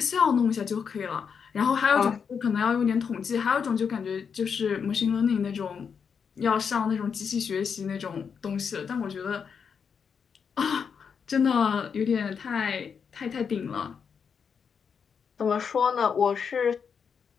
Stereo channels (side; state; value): right; quieter; 6.5 dB